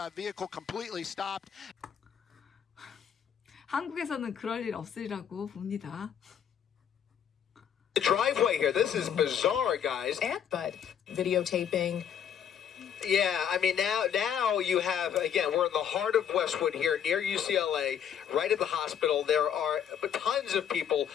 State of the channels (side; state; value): right; quieter; 8.7 dB